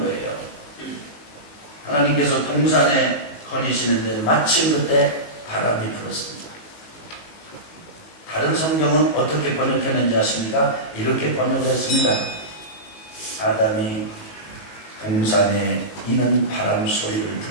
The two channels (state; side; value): late; right; 19 ms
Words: 거예요. 하나님께서 동산에 거니시는데 마침 그때 바람이 불었습니다. 다른 성경은 어떻게 번역했는지 아십니까? 이렇게 번역했습니다. 아담이 동산에 이는 바람 소리를